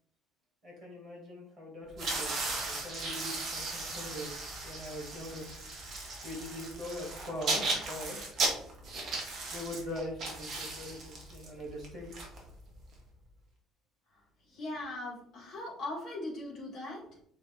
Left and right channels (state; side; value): normal; both; correlation 0.55